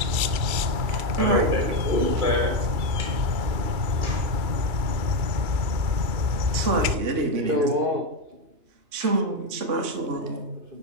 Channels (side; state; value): left; late; 2.9 ms